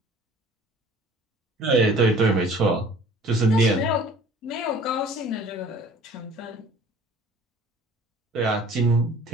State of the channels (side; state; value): both; normal; correlation 0.50